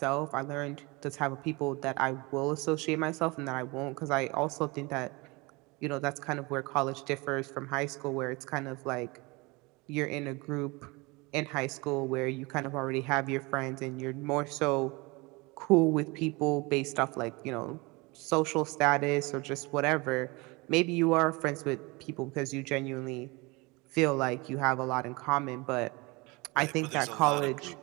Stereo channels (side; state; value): left; quieter; 25.5 dB